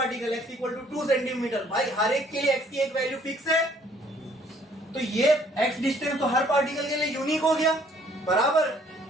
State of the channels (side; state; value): both; normal; correlation 0.61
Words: x equal to 2 centimetre, भाई हर एक के लिए x की एक वैल्यू फिक्स है, तो ये x डिस्टेंस तो हर पार्टिकल के लिए यूनिक हो गया, बराबर।